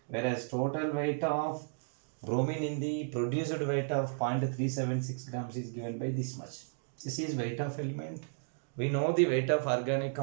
whereas total weight of bromine in the produced weight of 0.376 grams is given by this much. This is weight of element. We know the weight of organic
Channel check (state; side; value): silent; left; digital silence